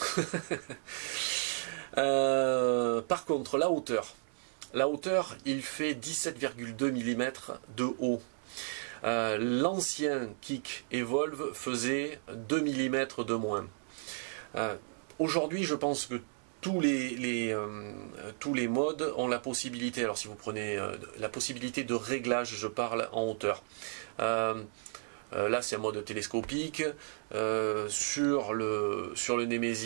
Par contre, la hauteur, il fait 17,2 mm de haut. L'ancien kick Evolve faisait 2 mm de moins. Aujourd'hui, je pense que tous les modes ont la possibilité, alors si vous prenez la possibilité de réglage, je parle en hauteur. Là c'est un mode télescopique, sur le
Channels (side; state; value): left; silent; digital silence